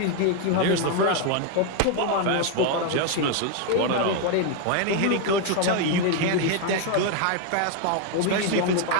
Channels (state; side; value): different; both; correlation 0.01